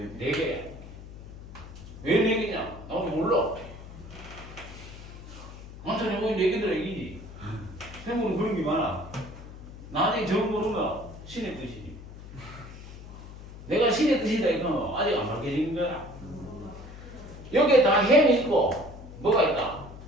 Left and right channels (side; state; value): left; noise; hum, 14 dB below the sound